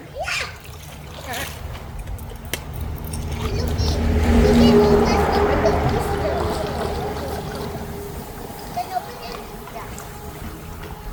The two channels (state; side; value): identical; both; correlation 1.00